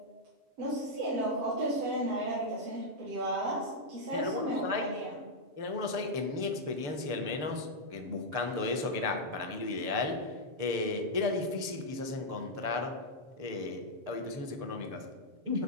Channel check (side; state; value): left; late; 6.8 ms